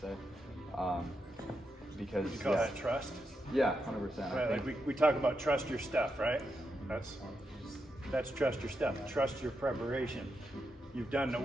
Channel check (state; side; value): normal; both; correlation 0.84